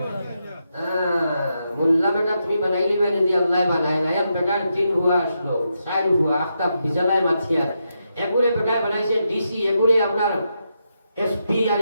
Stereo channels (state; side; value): inverted; both; correlation -0.84